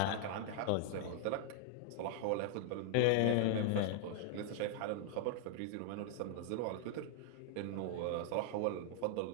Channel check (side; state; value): both; different; correlation -0.01